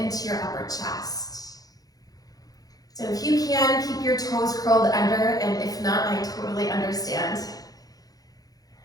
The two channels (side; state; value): right; late; 0.18 ms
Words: your upper chest. So if you can, keep your toes curled under, and if not, I totally understand.